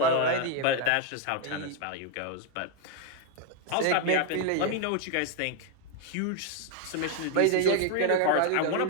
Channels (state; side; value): different; both; correlation 0.00